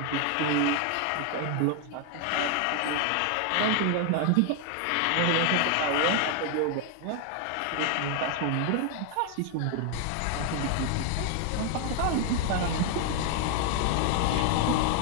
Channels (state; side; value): different; both; correlation 0.01